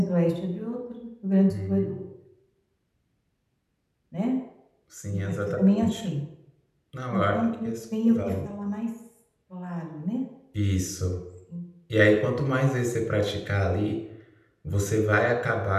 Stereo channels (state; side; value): identical; both; correlation 1.00